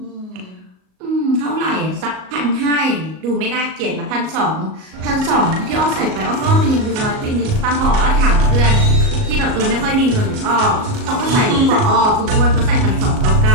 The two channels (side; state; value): left; late; 38 ms